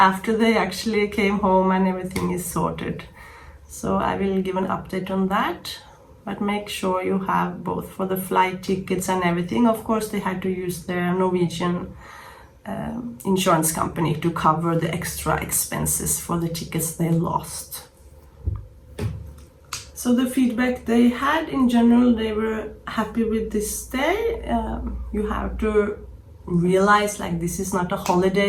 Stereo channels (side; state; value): both; identical; correlation 1.00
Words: they actually came home and everything is sorted. So I will give an update on that, but make sure you have both for the flight tickets and everything. Of course, they had to use their Norwegian insurance company to cover the extra expenses for the tickets they lost. So the feedback they had in general, they were happy with this stay. You have to realize like this is not a